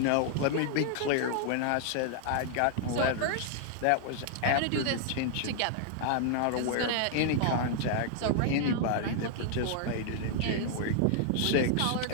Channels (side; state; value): both; different; correlation 0.00